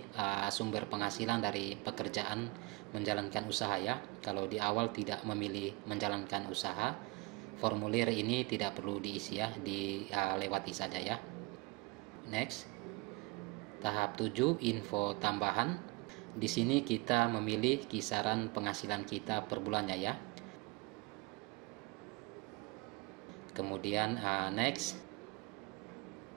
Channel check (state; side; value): quieter; left; 25.8 dB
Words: sumber penghasilan dari pekerjaan menjalankan usaha ya. Kalau di awal tidak memilih menjalankan usaha, formulir ini tidak perlu diisi ya, dilewati saja ya. Next. Tahap 7, info tambahan. Di sini kita memilih kisaran penghasilan kita per bulannya ya. Kemudian next.